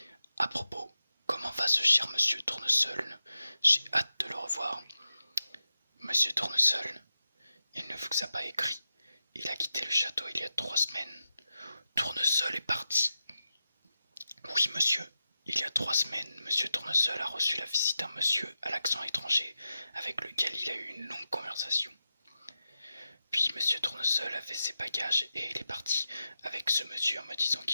À propos, comment va ce cher monsieur Tournesol? J'ai hâte de le revoir. Monsieur Tournesol, il ne vous a pas écrit. Il a quitté le château il y a 3 semaines. Tournesol est parti. Oui, monsieur. Il y a 3 semaines, monsieur Tournesol a reçu la visite d'un monsieur à l'accent étranger avec lequel il a eu une longue conversation. Puis monsieur Tournesol a fait ses bagages et il est parti avec ce monsieur en me disant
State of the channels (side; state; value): both; inverted; correlation -0.90